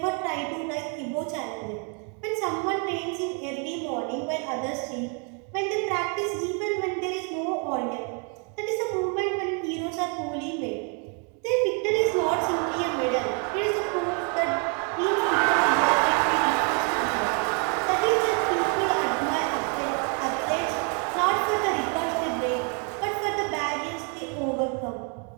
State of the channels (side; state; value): left; quieter; 38.5 dB